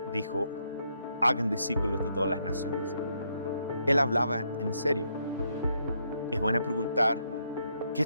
dijo, hagan discípulos de todas las naciones. Él hablaba en serio. Es bueno preguntar, ¿qué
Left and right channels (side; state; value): both; inverted; correlation -0.76